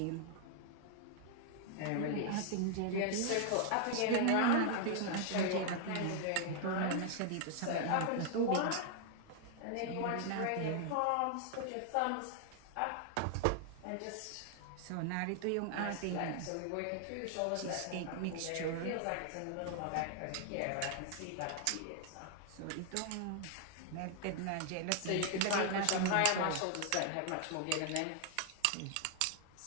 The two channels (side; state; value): both; different; correlation 0.00